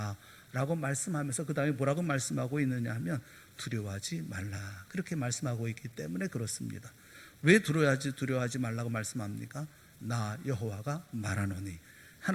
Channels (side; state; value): both; identical; correlation 1.00